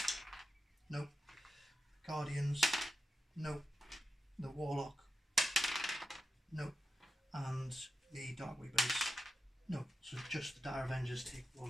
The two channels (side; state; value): both; normal; correlation 0.91